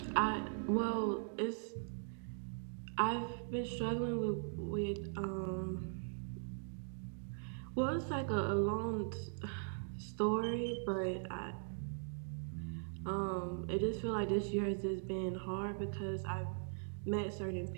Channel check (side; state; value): left; silent; digital silence